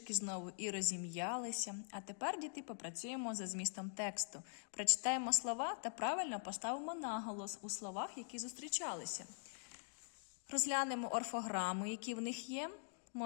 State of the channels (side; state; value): right; silent; digital silence